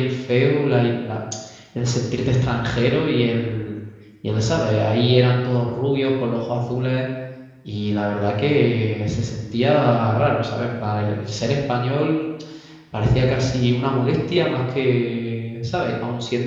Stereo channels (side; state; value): both; identical; correlation 1.00